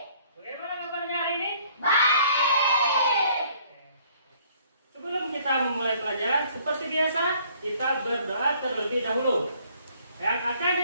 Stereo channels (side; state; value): both; inverted; correlation -0.60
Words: Memulai pelajaran seperti biasa, kita berdoa terlebih dahulu yang akan